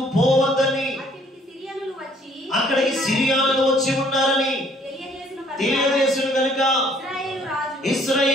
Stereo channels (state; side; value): normal; both; correlation 0.61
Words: పోవద్దని, అక్కడికి సిరియానులు వచ్చి ఉన్నారని తెలియజేసిన కనుక